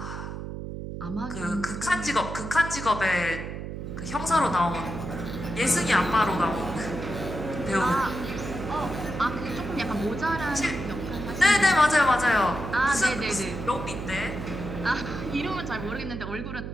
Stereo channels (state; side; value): noise; right; hum, 7 dB below the sound